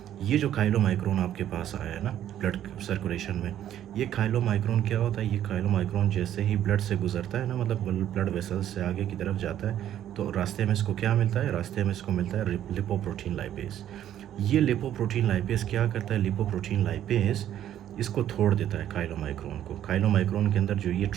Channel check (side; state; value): left; quieter; 11.2 dB